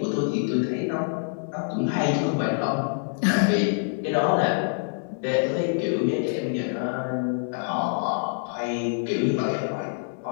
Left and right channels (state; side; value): silent; right; digital silence